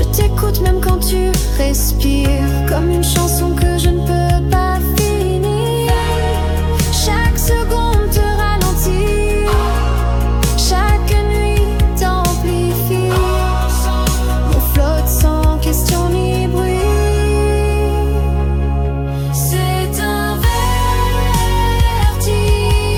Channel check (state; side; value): identical; both; correlation 1.00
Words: t'écoute même quand tu respires, comme une chanson que je ne peux pas finir. Chaque seconde te ralentit, chaque nuit t'amplifie. On flotte sans question ni bruit. C'est un